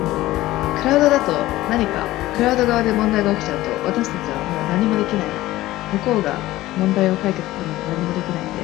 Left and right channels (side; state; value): right; quieter; 16.6 dB